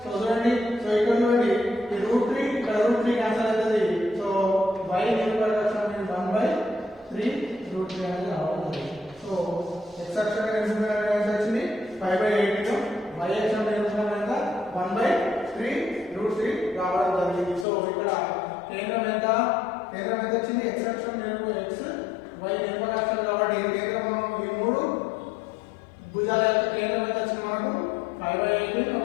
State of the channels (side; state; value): right; drops out; at 17.7 s